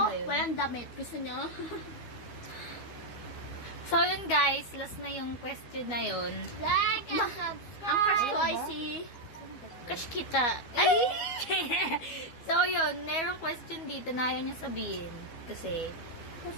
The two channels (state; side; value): late; right; 12 ms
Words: ba yun? walang damit. Gusto nyo? So, yun guys. Last na yung question na yun. Like and subscribe. Ang crush ko ay si... Crush kita. Ay! So, yun. Merong question dito na ayaw niya sabihin. Kasi,